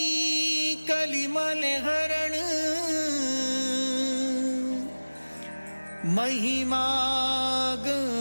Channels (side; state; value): both; inverted; correlation -1.00